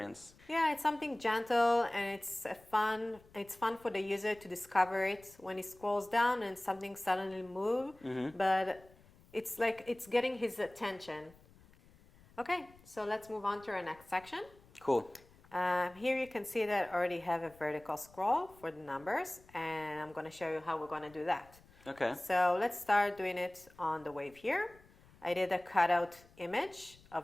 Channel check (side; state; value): left; noise; rumble, 26 dB below the sound